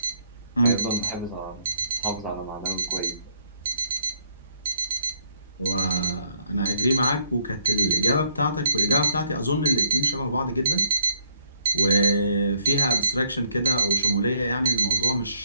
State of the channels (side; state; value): both; inverted; correlation -0.66